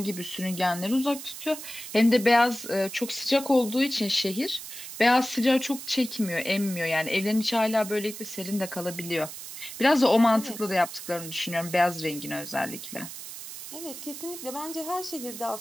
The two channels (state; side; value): noise; right; hiss, 11 dB below the sound